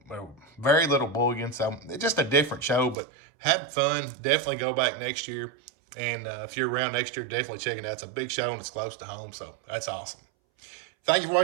very little bullion. So it's just a different show, but had fun. Definitely go back next year. And if you're around next year, definitely check it out. It's a big show and it's close to home, so that's awesome. Thank you for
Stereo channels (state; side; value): drops out; left; at 3.0 s